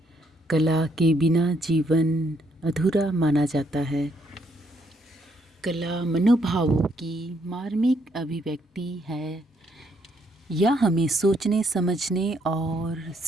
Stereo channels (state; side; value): normal; both; correlation 0.72